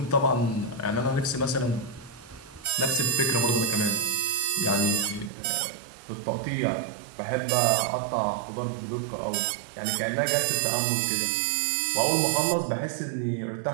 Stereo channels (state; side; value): drops out; left; at 5.3 s